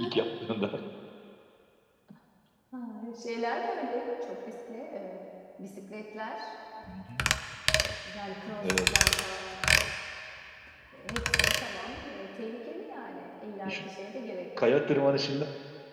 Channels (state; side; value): identical; both; correlation 1.00